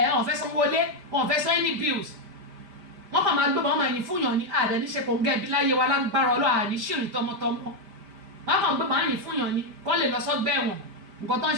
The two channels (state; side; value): late; left; 5.1 ms